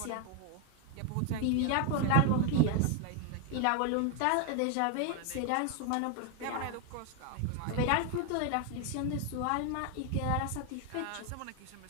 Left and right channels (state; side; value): different; both; correlation 0.01